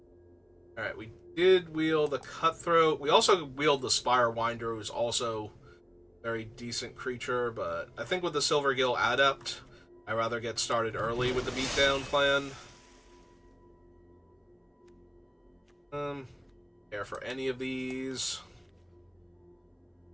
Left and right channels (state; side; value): identical; both; correlation 1.00